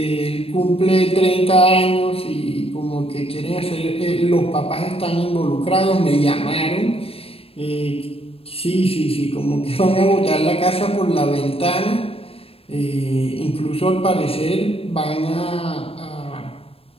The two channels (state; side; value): late; right; 0.28 ms